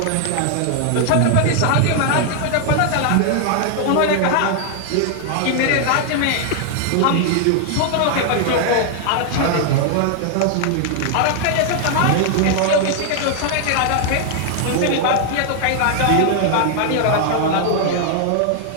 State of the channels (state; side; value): different; both; correlation 0.00